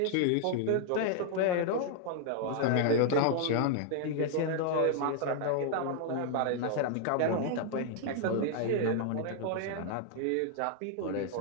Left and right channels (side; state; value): both; different; correlation 0.00